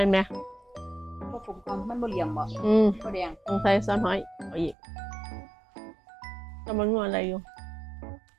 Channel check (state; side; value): drops out; left; at 4.8 s